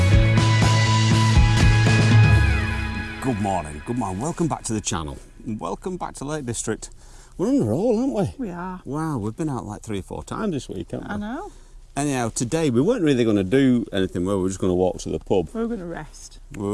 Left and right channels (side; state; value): both; identical; correlation 1.00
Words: Good morning, welcome back to the channel. Welcome back to Lake District. We're on a roll, aren't we? We are. Wow, we've been out like 3 or 4 times this week, haven't we? I know. Anyhow, today we weren't really going to do anything, we were just going to walk to the pub. We were going to rest. We